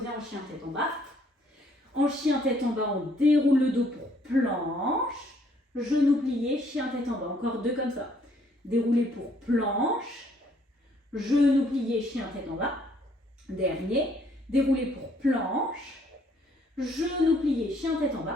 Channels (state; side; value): normal; both; correlation 0.65